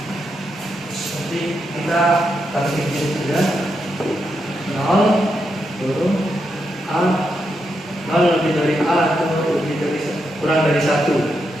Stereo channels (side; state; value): both; normal; correlation 0.83